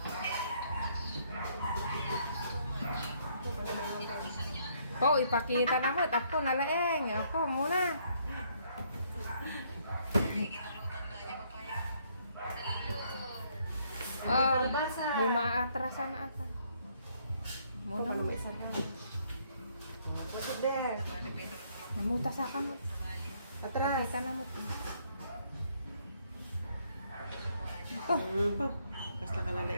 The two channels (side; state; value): both; inverted; correlation -0.68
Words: Ko, ipakita na mo. Ako nalaeng. Ako muna. Oh, may maatrasan na ata. Muna mo. Go to there. Namuta sa kamot. Atras. Pakita na mo. Kas